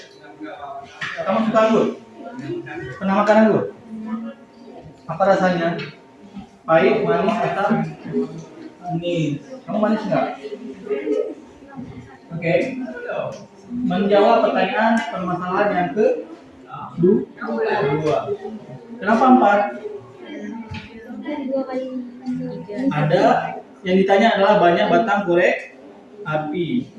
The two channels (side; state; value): both; identical; correlation 1.00